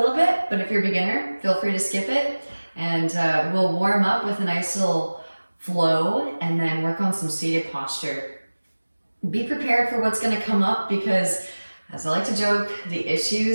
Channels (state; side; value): inverted; both; correlation -1.00